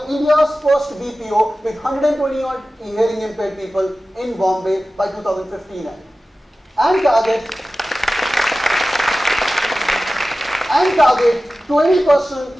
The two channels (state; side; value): normal; both; correlation 0.96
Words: India's first BPO with 120 odd hearing impaired people in Bombay by 2015 and target